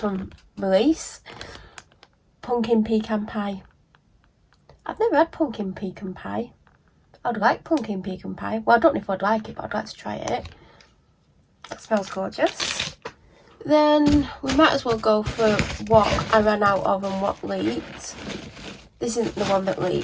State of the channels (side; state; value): both; identical; correlation 1.00